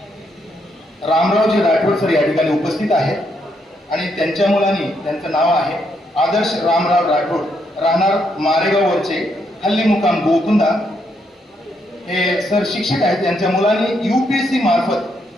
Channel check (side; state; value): both; normal; correlation 0.76